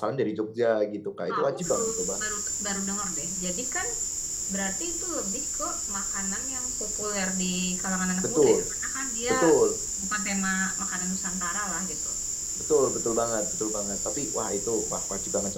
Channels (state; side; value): identical; both; correlation 1.00